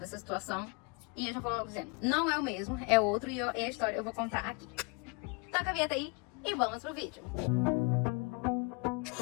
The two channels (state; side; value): quieter; right; 32.1 dB